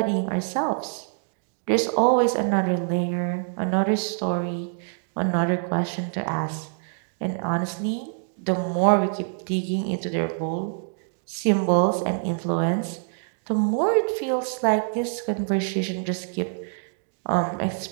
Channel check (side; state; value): left; silent; digital silence